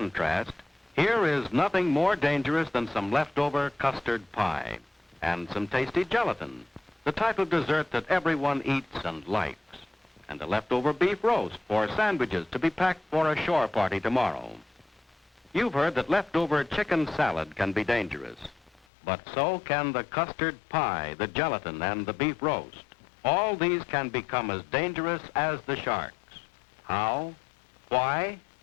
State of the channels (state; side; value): drops out; right; at 18.9 s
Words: here is nothing more dangerous than some leftover custard pie and some tasty gelatin, the type of dessert that everyone eats and likes, and a leftover beef roast for sandwiches to be packed for a shore party tomorrow. You've heard that leftover chicken salad can be dangerous. But so can the custard pie, the gelatin, and the beef roast. All these can become as dangerous as the sharks. How? Why?